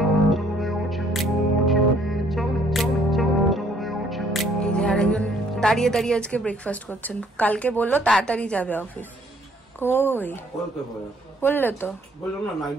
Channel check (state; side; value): normal; both; correlation 0.63